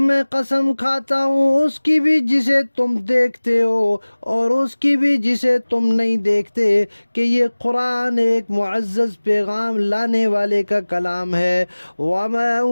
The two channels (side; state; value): both; inverted; correlation -1.00